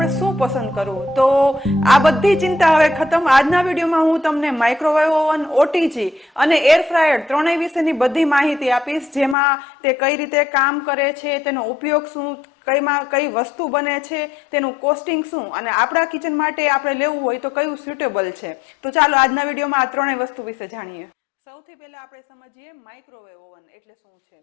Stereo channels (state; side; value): drops out; right; at 9.3 s